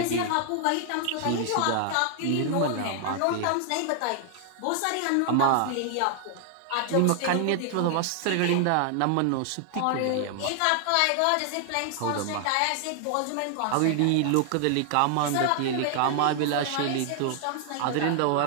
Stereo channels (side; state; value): both; different; correlation 0.00